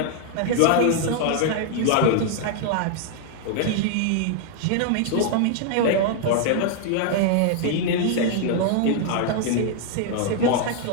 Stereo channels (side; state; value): both; different; correlation 0.00